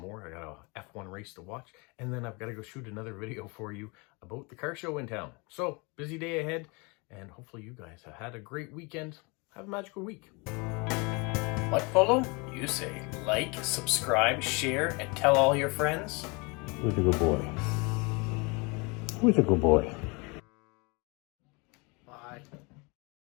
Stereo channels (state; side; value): quieter; right; 29.2 dB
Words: more. I got a F1 race to watch, and then I've got to go shoot another video for you about the car show in town. So, busy day ahead, and hopefully you guys have had a great weekend. Have a magical week. Like, follow? You say like, subscribe, share, and tell all your friends. Who's a good boy? Who's a good boy?